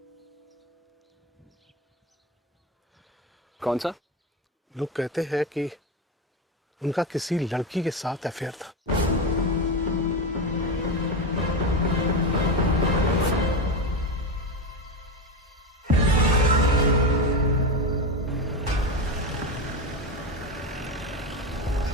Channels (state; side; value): normal; both; correlation 0.16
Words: कौन सा? लोग कहते हैं कि उनका किसी लड़की के साथ अफेयर था।